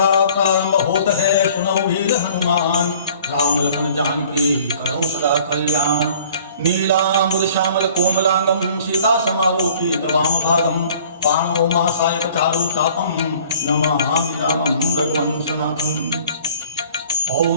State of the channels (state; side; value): inverted; both; correlation -0.52